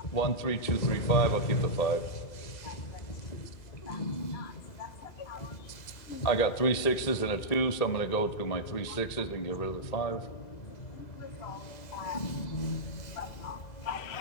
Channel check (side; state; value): right; late; 1.8 ms